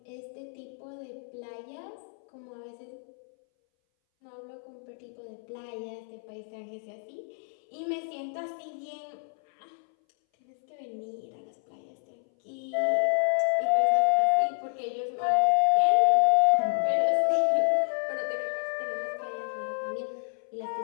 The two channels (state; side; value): silent; right; 59 dB below the other